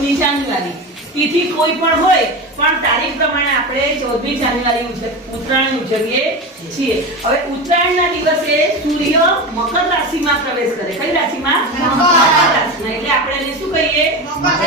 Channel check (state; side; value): normal; both; correlation 0.23